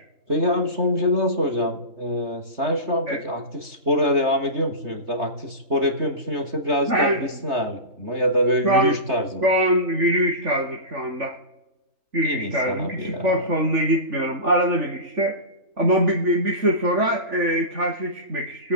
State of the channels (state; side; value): late; left; 3.3 ms